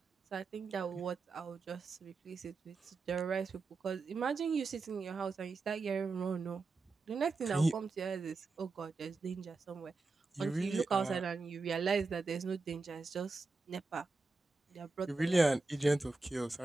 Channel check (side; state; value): left; quieter; 3.8 dB